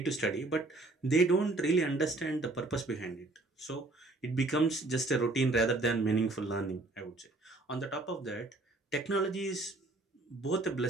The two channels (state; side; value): quieter; left; 3.0 dB